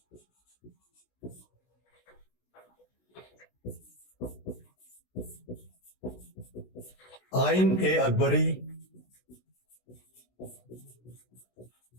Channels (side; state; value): right; late; 16 ms